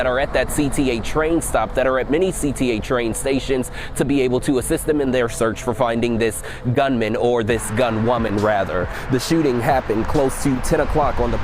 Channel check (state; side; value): identical; both; correlation 1.00